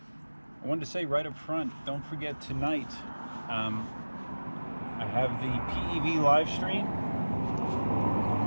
I wanted to say right up front, don't forget tonight, I have the PEV live stream.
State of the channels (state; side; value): inverted; both; correlation -1.00